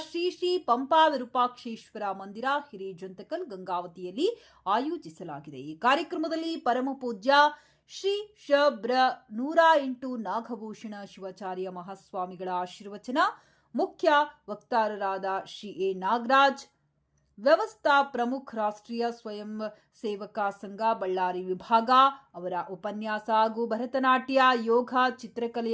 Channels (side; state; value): both; identical; correlation 1.00